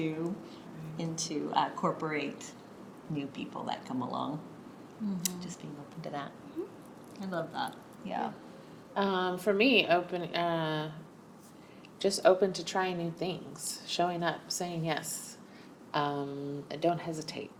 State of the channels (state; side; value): identical; both; correlation 1.00